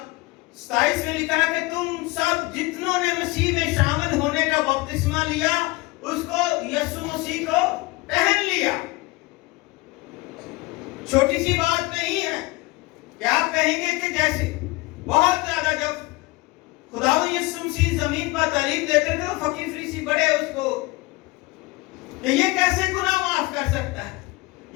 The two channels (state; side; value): quieter; right; 22.4 dB